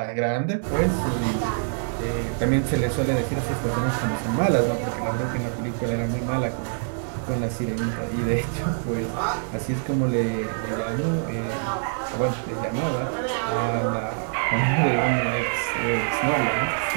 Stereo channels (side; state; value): left; silent; digital silence